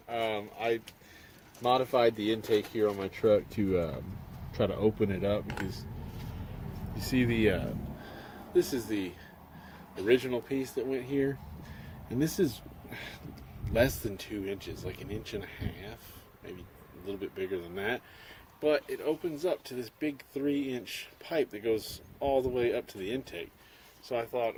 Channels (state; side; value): identical; both; correlation 1.00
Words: I modified the intake here on my truck to try to open it up because you see this is the original piece that went here, and this is less than 2 inches, like 1.5 inches, maybe a little bit bigger than that. But it opens up to this big 3-inch pipe that goes all the way up to the intake. So I thought,